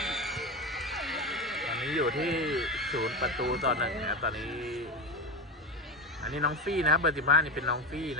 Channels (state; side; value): normal; both; correlation 0.19